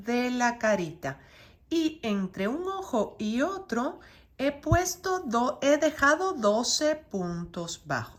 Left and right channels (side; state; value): both; identical; correlation 1.00